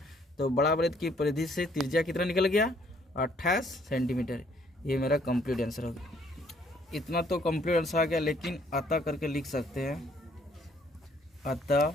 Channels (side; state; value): both; normal; correlation 0.64